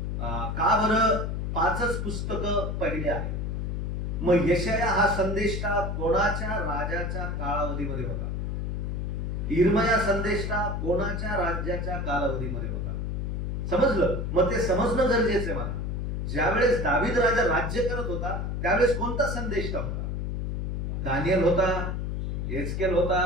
का बरं 5च पुस्तकं पहिले आहेत. मग यशाया हा संदेष्टा कोणाच्या राजाच्या कालावधीमध्ये होता, इर्मया संदेष्टा कोणाच्या राज्याच्या कालावधीमध्ये होता. समजलं. मग ते समजणं गरजेचं आहे मला. ज्यावेळेस दावीद राजा राज्य करत होता त्यावेळेस कोणता संदेष्टा होता, दानियल होता, एस्केल होता,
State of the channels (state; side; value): noise; left; hum, 2 dB below the sound